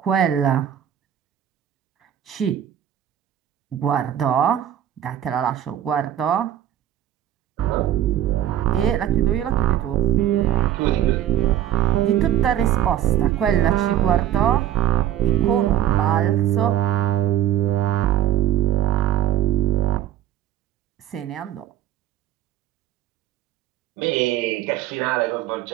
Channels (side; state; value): left; quieter; 11.5 dB